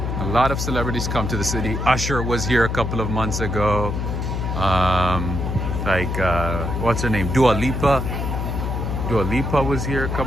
A lot of celebrities come to the city. Usher was here a couple of months ago. What's her name? Dua Lipa. Dua Lipa was here a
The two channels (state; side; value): noise; left; hum, 2 dB below the sound